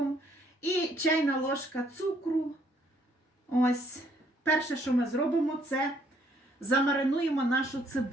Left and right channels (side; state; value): both; normal; correlation 0.67